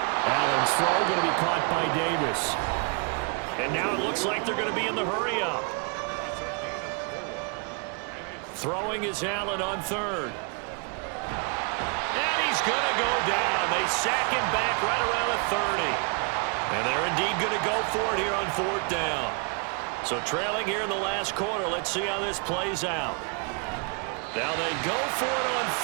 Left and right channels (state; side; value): quieter; left; 37.6 dB